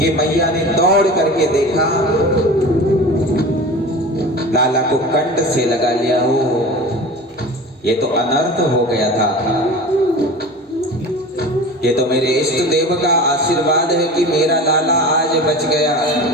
मैया ने दौड़ करके देखा, लाला को कंठ से लगा लिया। हो ये तो अनर्थ हो गया था। ये तो मेरे इष्ट देव का आशीर्वाद है कि मेरा लाला आज बच गया।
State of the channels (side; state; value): both; normal; correlation 0.35